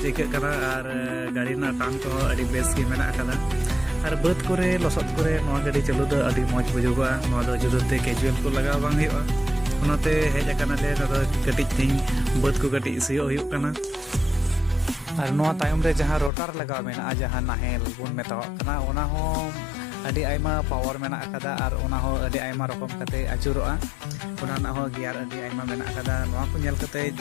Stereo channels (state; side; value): drops out; right; at 16.3 s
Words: ᱟᱹᱭᱠᱟᱹᱜ ᱠᱟᱱᱟ ᱟᱨ ᱜᱟᱹᱰᱤ ᱨᱮᱱᱟᱜ ᱴᱟᱱ ᱠᱚᱦᱚᱸ ᱟᱹᱰᱤ ᱵᱮᱥ ᱜᱮ ᱢᱮᱱᱟᱜ ᱟᱠᱟᱫᱟ আর বাদ করে লসত করে নয়া গাড়ি চালু ᱫᱚ ᱟᱹᱰᱤ ᱢᱚᱡᱽ ᱵᱩᱡᱩᱜᱚᱜᱼᱟ ᱱᱚᱣᱟ ᱫᱚ ᱡᱩᱫᱟᱹᱛᱮ ᱠᱮᱡᱩয়াᱞ ᱠᱚ ᱞᱟᱜᱟᱣ ᱵᱟᱝ ᱦᱩᱭᱩᱜᱼᱟ ᱚᱱᱟᱛᱮ ᱦᱮᱡ ᱟᱠᱟᱱᱟᱞᱮ ᱱᱚᱰᱮ ᱠᱟᱹᱴᱤᱡ ᱛᱤᱧ ᱵᱟᱹᱫ ᱠᱚ ᱠᱟᱹᱴᱤᱡ ᱥᱤᱭᱳᱜ ᱦᱩᱭᱩᱜ ᱠᱟᱱᱟ আর নয়া তাᱭᱚᱢ রে ᱡᱟᱦᱟᱸ ᱨᱳᱴᱟর ᱞᱟᱜᱟᱣ ᱢᱮᱱᱟᱜᱼᱟ ᱡᱟᱦᱟᱸ ᱱᱟᱦᱮᱞ ᱵᱚᱱ ᱢᱮᱛᱟᱣᱟᱜ ᱠᱟᱱᱟ ᱚᱱᱟ ᱦᱚᱸ ᱟᱹᱰᱤ ᱟᱭᱢᱟ ᱯᱟᱣᱟᱨ ᱢᱮᱱᱟᱜ ᱟᱠᱟᱫᱟ ᱟᱨ ᱚᱱᱟ ᱦᱚᱸ ᱟᱹᱰᱤ ᱟᱭᱢᱟ ᱨᱚᱠᱚᱢ ᱠᱟᱛᱮ ᱟᱹᱪᱩᱨᱚᱜᱼᱟ ᱚᱱᱟ ᱨᱮᱱᱟᱜ ᱦᱚᱸ ᱜᱤᱭᱟᱨ ᱟᱹᱰᱤ ᱟᱭᱢᱟ ᱢᱮᱱᱟᱜ ᱟᱠᱟᱫᱟ ᱱᱚᱣᱟ ᱠᱚ ᱧᱮᱞ ᱠᱟᱛᱮ